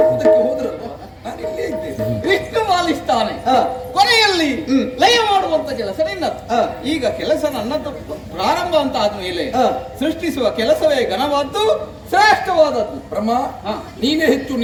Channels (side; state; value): both; identical; correlation 1.00